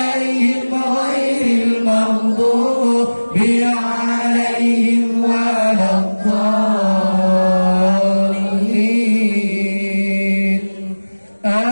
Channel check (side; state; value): both; inverted; correlation -1.00